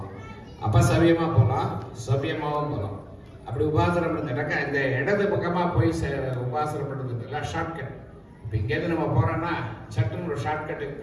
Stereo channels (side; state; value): both; identical; correlation 1.00